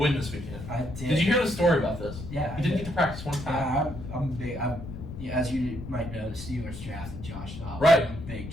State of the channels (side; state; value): left; noise; rumble, 10 dB below the sound